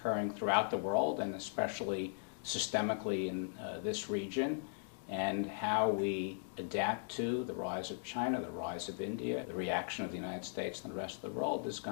throughout the world, and especially systemically in this region, and how we adapt to the rise of China, the rise of India, the reaction of the United States and the rest of the world is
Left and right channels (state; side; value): silent; right; digital silence